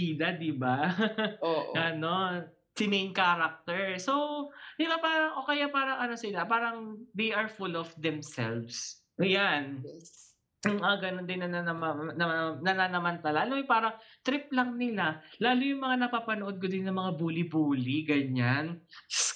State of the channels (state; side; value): identical; both; correlation 1.00